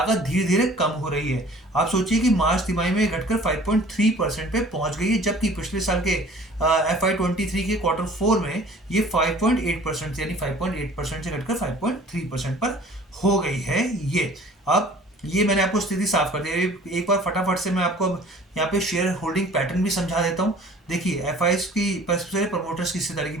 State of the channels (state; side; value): normal; both; correlation 0.49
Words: धीरे धीरे कम हो रही है। आप सोचिए कि मार्च तिमाही में घटकर 5.3% पे पहुंच गई है, जबकि पिछले साल के FY23 के क्वार्टर 4 में ये 5.8%, यानी 5.8% से घटकर 5.3% पर हो गई है ये। अब ये मैंने आपको स्थिति साफ कर दी है। एक बार फटाफट से मैं आपको अब यहाँ पे शेयर होल्डिंग पैटर्न भी समझा देता हूँ। देखिए एफआईएस की सबसे पहले प्रमोटर्स की हिस्सेदारी की